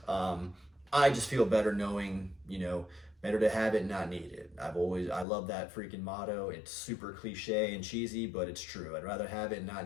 I just feel better knowing, better to have it, not need it. I love that freaking motto. It's super cliche and cheesy, but it's true. I'd rather have it and not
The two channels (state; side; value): drops out; right; at 5.2 s